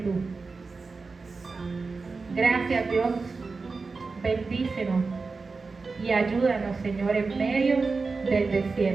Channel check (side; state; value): left; quieter; 4.2 dB